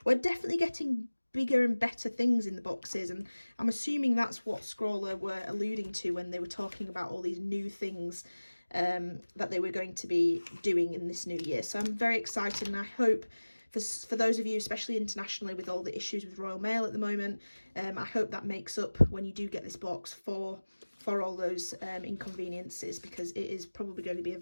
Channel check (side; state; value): both; inverted; correlation -1.00